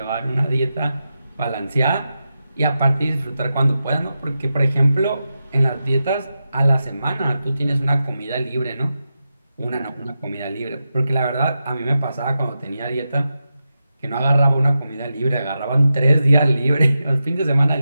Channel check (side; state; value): both; inverted; correlation -0.89